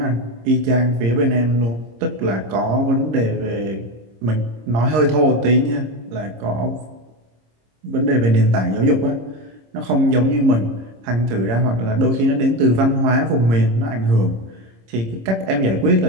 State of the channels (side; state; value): left; late; 26 ms